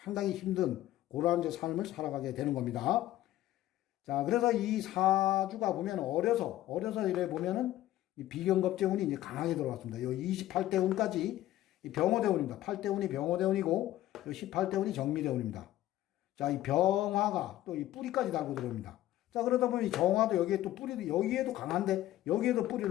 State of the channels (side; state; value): right; quieter; 14.4 dB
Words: 상당히 힘든 그러한 이제 삶을 살아가게 되는 겁니다. 자, 그래서 이 사주가 보면 어려서 이래 보면은 이 비경겁제 운이 이제 강하게 들어왔습니다. 요 28대 운까지 이 병호대 운입니다. 8대 운이 병호대 운이고 요 18대 운이 정미대 운입니다. 자, 이 병화가 또 이 뿌리까지 달고 들어옵니다. 자, 그러다 보면 이 정화도 여기에 또 뿌리도, 여기에도 강한데, 여기에도